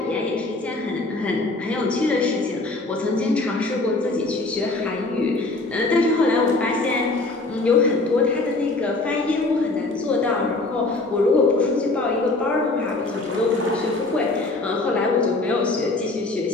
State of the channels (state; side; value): quieter; right; 3.1 dB